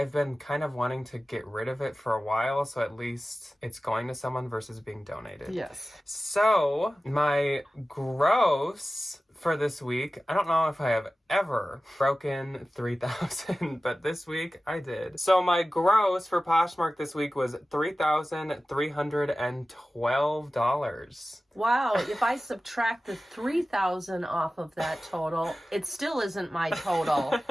been kind of wanting to get rid of it for a while, so at least it's going to someone versus being donated. Yes. So my gross for this week, I don't know if I have ever broken 3,000, but this week I did. So my gross for Poshmark this week was $3,312. Wow, if I subtract the 3,000 off of that total, it still isn't my total.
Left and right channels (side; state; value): both; normal; correlation 0.96